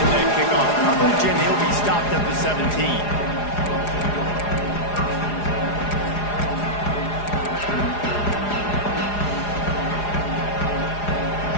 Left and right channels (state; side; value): late; right; 4.9 ms